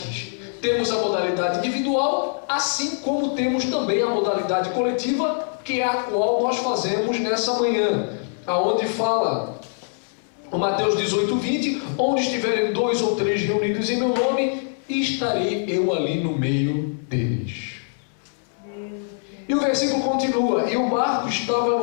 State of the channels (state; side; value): silent; right; digital silence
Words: Temos a modalidade individual, assim como temos também a modalidade coletiva, que é a qual nós fazemos nessa manhã, aonde fala o Mateus 18:20, onde estiverem 2 ou 3 reunidos em meu nome, estarei eu ali no meio deles. E o versículo continua: e o barco estava